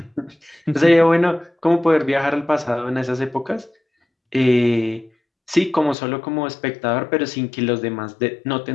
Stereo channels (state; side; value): drops out; right; at 6.0 s